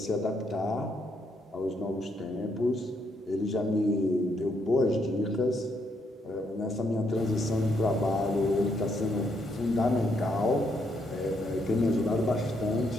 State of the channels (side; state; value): both; normal; correlation 0.75